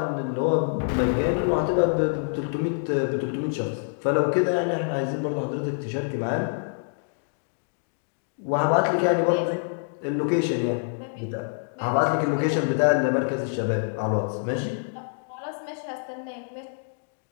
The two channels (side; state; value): right; silent; digital silence